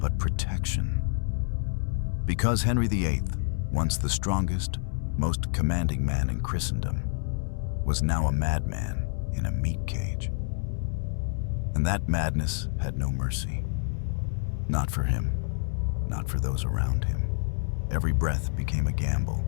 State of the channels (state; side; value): silent; right; 59 dB below the other